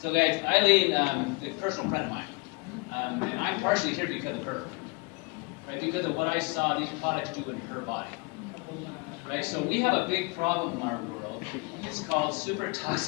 So guys, Eileen, a personal friend of mine. And I'm partially here because of her. Right? Because of what I saw these products do in her body. Right? So we have a big problem in our world. It's called super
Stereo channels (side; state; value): right; quieter; 29.4 dB